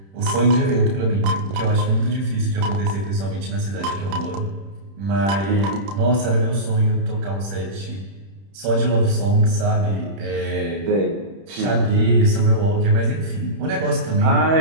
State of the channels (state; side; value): late; left; 31 ms